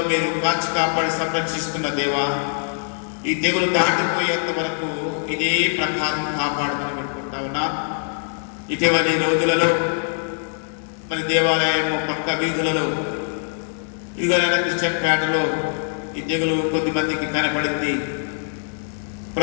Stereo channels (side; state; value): right; silent; digital silence